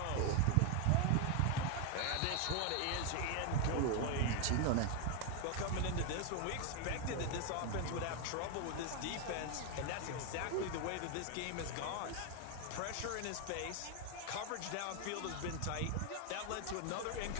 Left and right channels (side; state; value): both; different; correlation 0.01